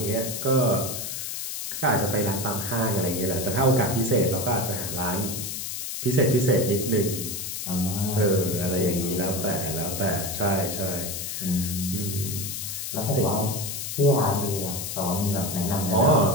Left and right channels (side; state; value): left; noise; hiss, 5 dB below the sound